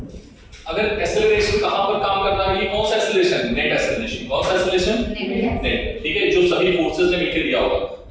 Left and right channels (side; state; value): both; identical; correlation 1.00